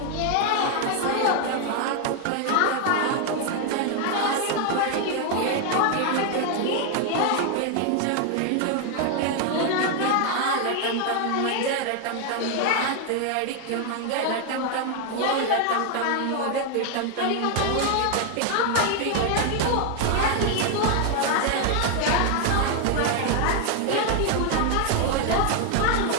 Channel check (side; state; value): both; different; correlation 0.01